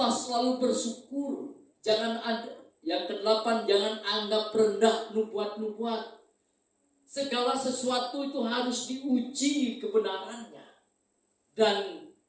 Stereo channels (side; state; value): both; identical; correlation 1.00